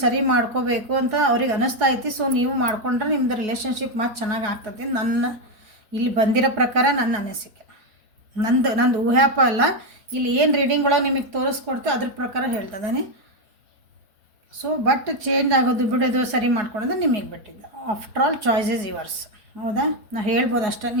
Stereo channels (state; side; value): late; left; 4.4 ms